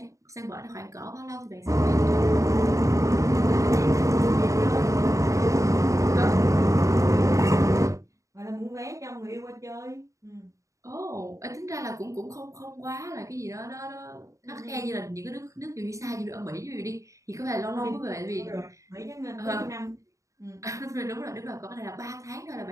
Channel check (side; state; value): left; late; 0.15 ms